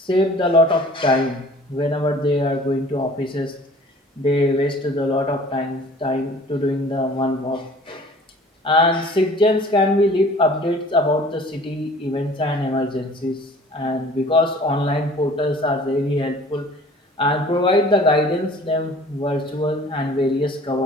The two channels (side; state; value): both; normal; correlation 0.49